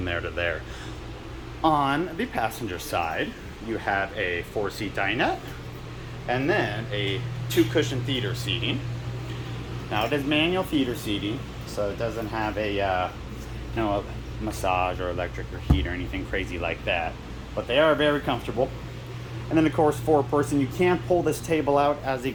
there to there. On the passenger side, you have a 4-seat dinette, and then a 2-cushion theater seating. Now it is manual theater seating, so it doesn't have a massage or electric or heat or anything crazy like that. But they are very comfortable. And then of course, 4-person, you can pull this table out. As you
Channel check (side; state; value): both; identical; correlation 1.00